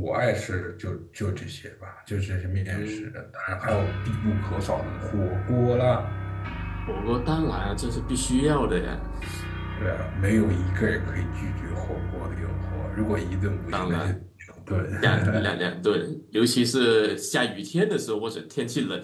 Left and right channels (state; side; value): identical; both; correlation 1.00